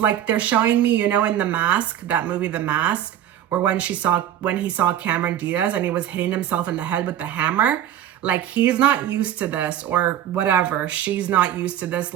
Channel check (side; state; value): left; quieter; 11.1 dB